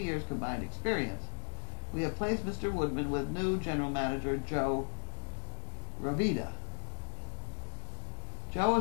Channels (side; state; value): right; silent; digital silence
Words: years combined experience. We have placed Mr. Woodman with new general manager Joe Ravita. Joe